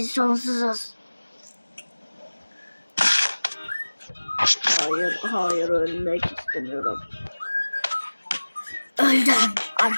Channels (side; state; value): both; inverted; correlation -1.00